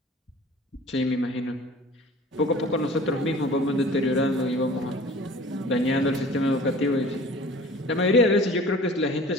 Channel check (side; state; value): both; normal; correlation 0.45